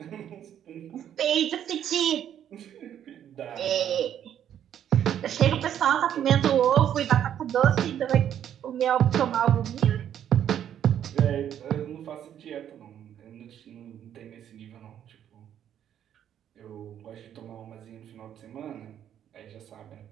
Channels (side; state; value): left; quieter; 10.0 dB